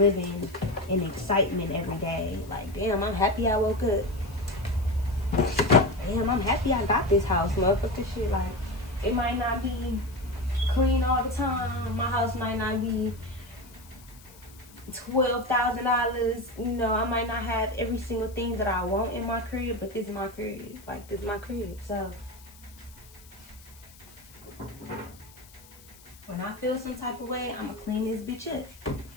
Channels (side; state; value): left; noise; hiss, 23 dB below the sound